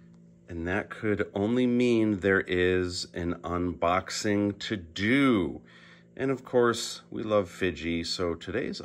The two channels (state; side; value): identical; both; correlation 1.00